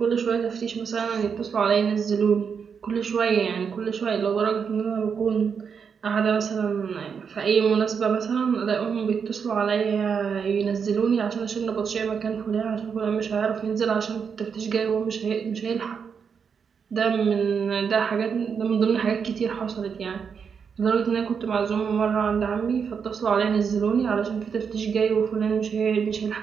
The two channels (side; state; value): left; quieter; 6.5 dB